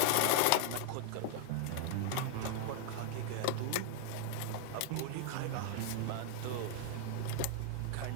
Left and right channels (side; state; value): both; different; correlation 0.00